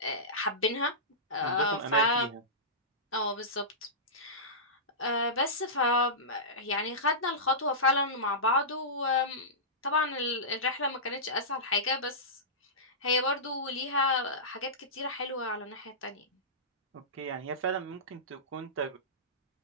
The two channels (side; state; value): both; normal; correlation -0.17